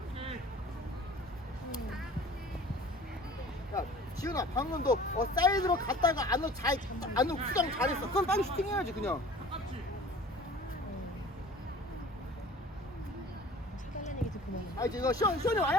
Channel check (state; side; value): normal; both; correlation 0.45